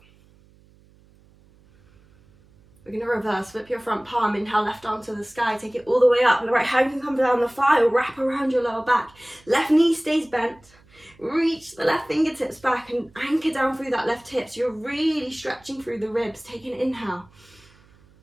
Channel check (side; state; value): right; noise; hum, 29 dB below the sound